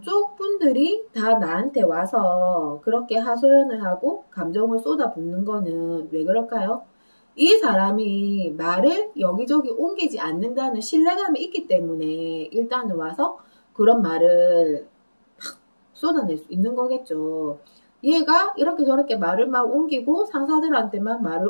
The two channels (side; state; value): both; inverted; correlation -1.00